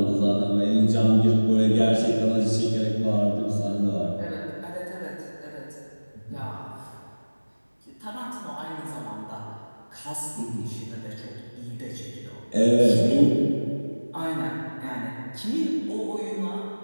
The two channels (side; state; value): both; inverted; correlation -1.00